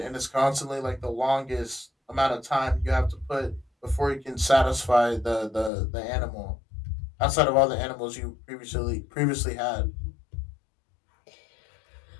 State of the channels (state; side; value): drops out; right; at 5.7 s